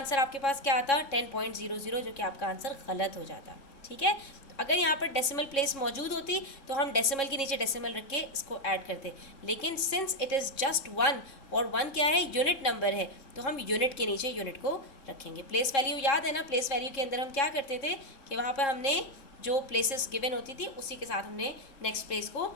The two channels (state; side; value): late; right; 3.6 ms